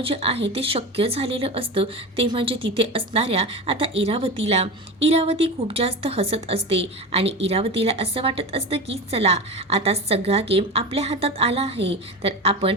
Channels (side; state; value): both; normal; correlation 0.25